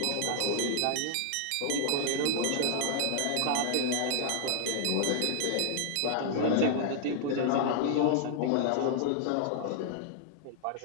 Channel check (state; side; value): different; both; correlation 0.00